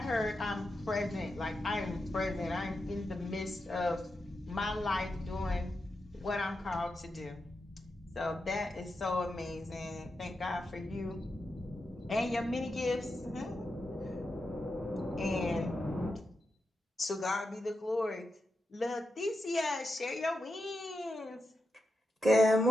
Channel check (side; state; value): both; normal; correlation 0.87